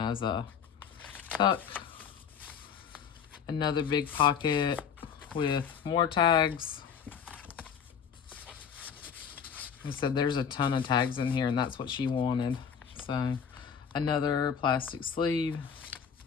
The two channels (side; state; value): right; quieter; 7.4 dB